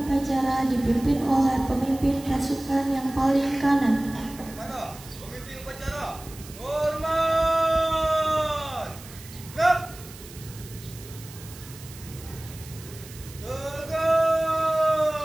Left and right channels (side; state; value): right; noise; hiss, 18 dB below the sound